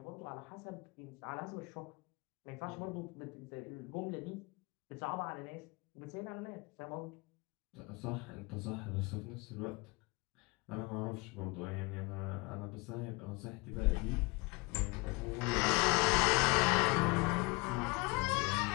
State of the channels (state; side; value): quieter; right; 26.2 dB